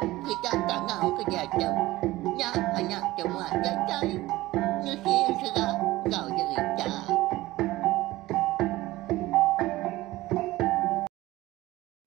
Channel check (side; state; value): left; quieter; 18.0 dB